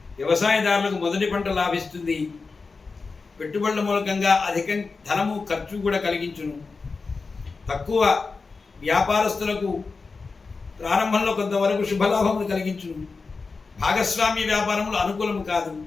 వ్యవసాయదారులకు మొదటి పంట లాభిస్తుంది. పెట్టుబడుల మూలకంగా అధిక ధనము ఖర్చు కూడా కలిగించును. తక్కువ వ్యాపారస్తులకు ప్రారంభంలో కొంతవరకు శుభలాభములు కలిగించును. భాగస్వామ్య వ్యాపారములు అనుకూలము కాదు.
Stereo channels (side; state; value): right; quieter; 4.3 dB